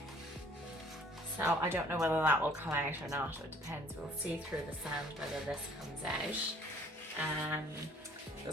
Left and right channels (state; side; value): normal; both; correlation 0.56